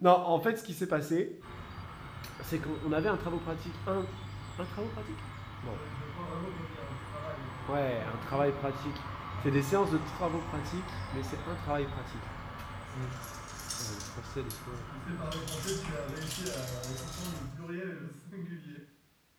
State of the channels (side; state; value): both; identical; correlation 1.00